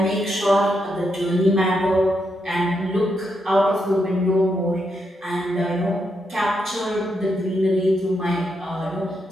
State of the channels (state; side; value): normal; both; correlation 0.81